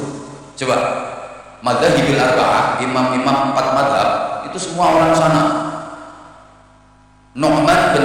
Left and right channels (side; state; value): both; identical; correlation 1.00